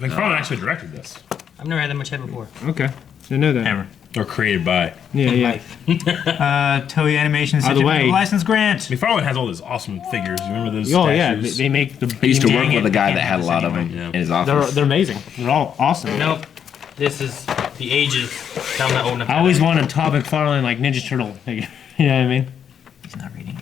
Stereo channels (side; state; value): right; quieter; 8.2 dB